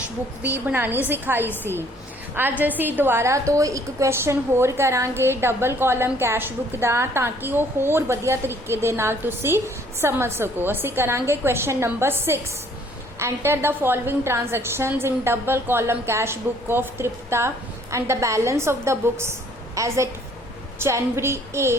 ਬੁੱਕ ਵੀ ਬਣਾਉਣੀ ਸਿਖਾਈ ਸੀ। ਅੱਜ ਅਸੀਂ ਦੁਬਾਰਾ ਤੋਂ ਇੱਕ ਕੁਐਸਚਨ ਹੋਰ ਕਰਾਂਗੇ ਡਬਲ ਕਾਲਮ ਕੈਸ਼ ਬੁੱਕ ਦਾ ਤਾਂ ਕਿ ਉਹ ਹੋਰ ਵਧੀਆ ਤਰੀਕੇ ਦੇ ਨਾਲ ਤੁਸੀਂ ਸਮਝ ਸਕੋ। ਅਸੀਂ ਕਰਾਂਗੇ question number 6। Enter the following transactions in double column cash book of Tripta and the balance of the books as at January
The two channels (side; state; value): both; normal; correlation 0.60